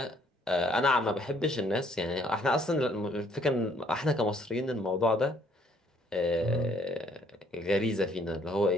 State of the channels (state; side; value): normal; both; correlation 0.64